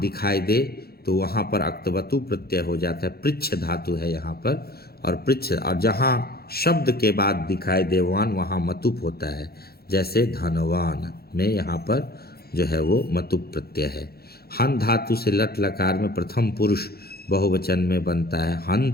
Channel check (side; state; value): right; late; 0.45 ms